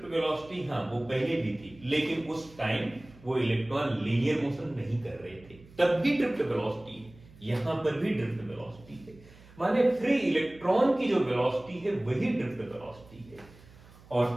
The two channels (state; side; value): noise; right; hum, 23 dB below the sound